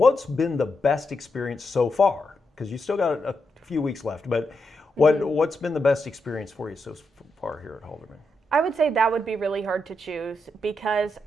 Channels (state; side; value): normal; both; correlation 0.84